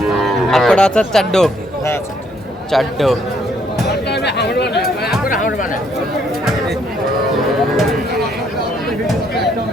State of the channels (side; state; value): both; normal; correlation 0.69